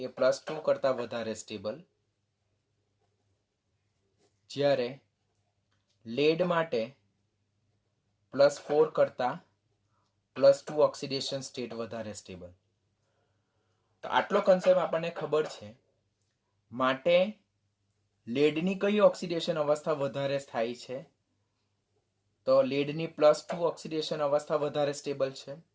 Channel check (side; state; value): both; identical; correlation 1.00